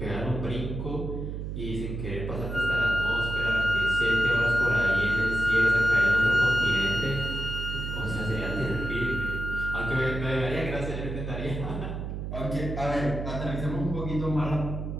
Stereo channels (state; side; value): noise; right; hum, 5 dB below the sound